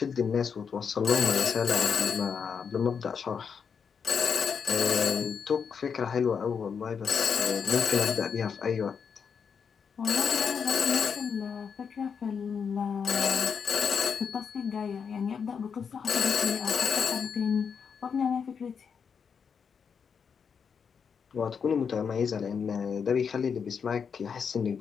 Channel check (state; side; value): quieter; right; 6.5 dB